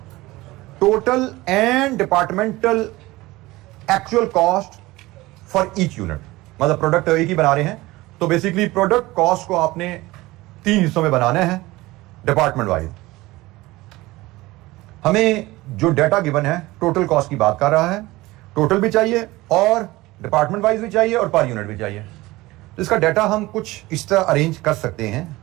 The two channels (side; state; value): left; quieter; 19.6 dB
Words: Total and departmental actual cost for each unit. मतलब प्रोडक्ट एक ही बना रहे हैं, तो बेसिकली प्रोडक्ट कॉस्ट को आपने 3 हिस्सों में बनाना है डिपार्टमेंट वाइज. हमें जो डाटा गिवन है टोटल कॉस्ट की बात कर रहा है. टोटल भी चाहिए और डिपार्टमेंट वाइज भी चाहिए और पर यूनिट भी चाहिए. तो इसका डाटा हम कुछ इस तरह अरेंज कर सकते हैं.